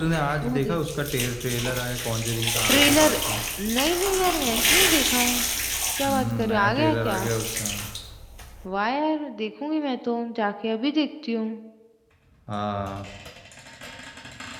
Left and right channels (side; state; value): both; identical; correlation 1.00